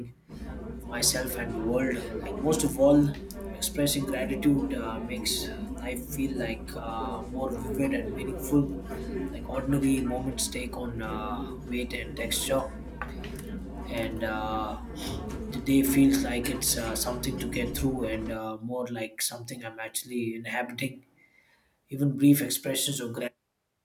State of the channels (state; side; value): identical; both; correlation 1.00